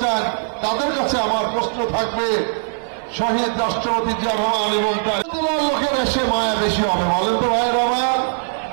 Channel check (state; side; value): silent; left; 60 dB below the other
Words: চান তাদের কাছে আমার প্রশ্ন থাকবে, শহীদ রাষ্ট্রপতি জিয়া রহমান এবং তার লোকের এসে মায়া বেশি হবে বলেন তো ভাই রহমান?